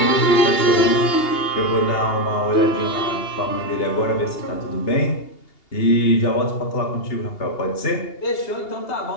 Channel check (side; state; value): right; late; 2.8 ms